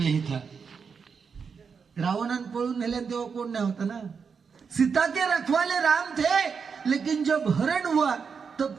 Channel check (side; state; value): left; quieter; 5.9 dB